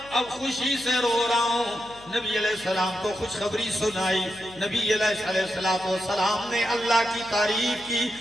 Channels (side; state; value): left; noise; hum, 22 dB below the sound